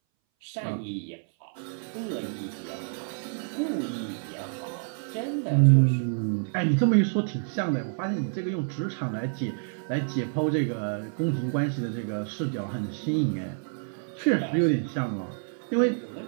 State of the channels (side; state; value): left; silent; 59 dB below the other